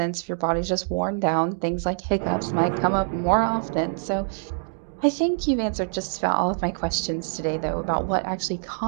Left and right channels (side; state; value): left; silent; digital silence